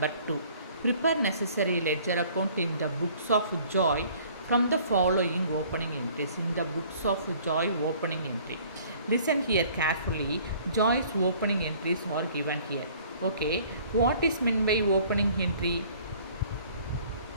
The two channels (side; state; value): both; inverted; correlation -0.54